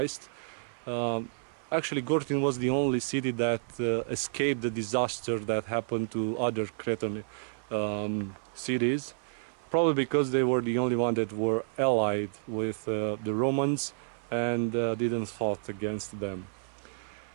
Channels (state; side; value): silent; left; 55 dB below the other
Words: actually Gortyn was the only city that escaped the disaster that happened to other Cretan cities, probably because they were the only one that were allied with the Romans and didn't fight against them.